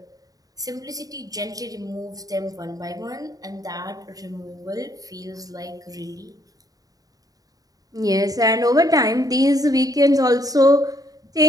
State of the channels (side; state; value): left; late; 0.18 ms